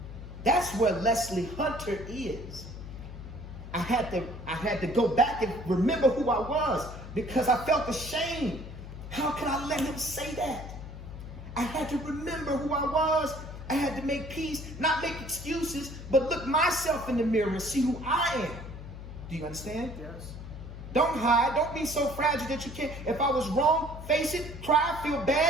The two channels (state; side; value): noise; left; hum, 11 dB below the sound